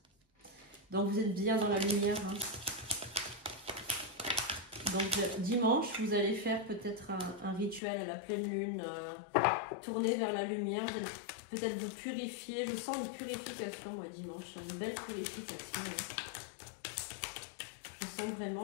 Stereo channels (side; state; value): right; drops out; at 7.8 s